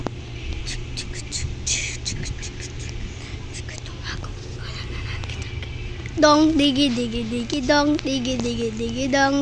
Dong digi dong digi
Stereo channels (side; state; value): both; identical; correlation 1.00